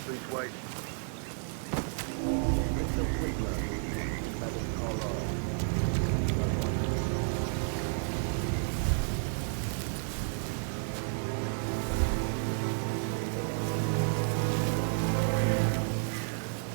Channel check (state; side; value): silent; left; 57 dB below the other